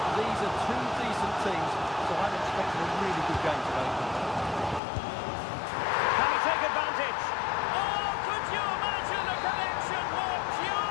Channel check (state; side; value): drops out; right; at 4.8 s